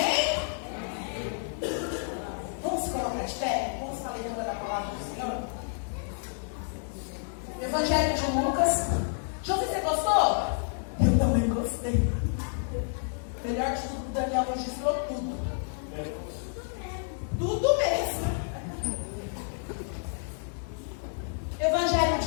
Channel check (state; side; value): silent; right; digital silence